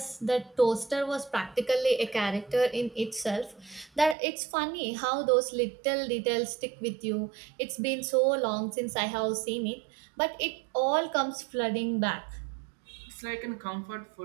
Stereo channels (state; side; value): drops out; left; at 4.2 s